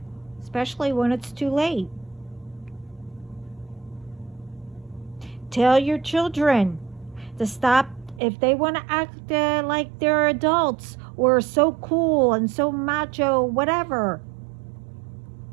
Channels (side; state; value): left; drops out; at 8.2 s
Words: especially when it's too late? Tell your children to stop. If they want to act like they're adults or so cool and so macho, whatever.